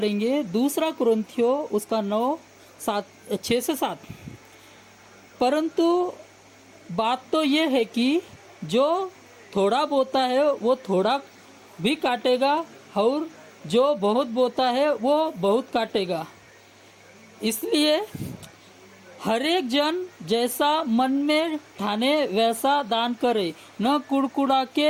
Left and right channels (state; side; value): identical; both; correlation 1.00